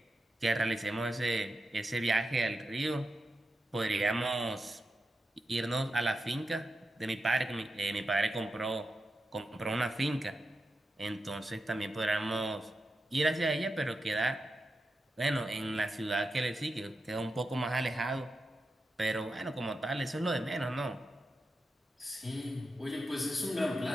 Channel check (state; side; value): normal; both; correlation 0.88